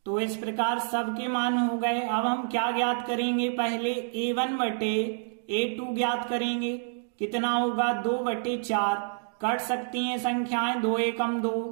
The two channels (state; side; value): silent; left; digital silence